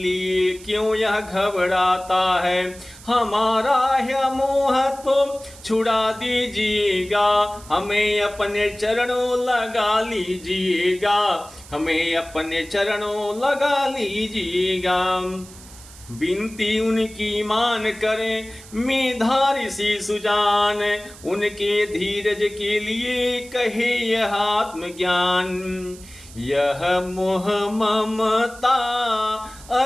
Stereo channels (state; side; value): noise; right; hiss, 20 dB below the sound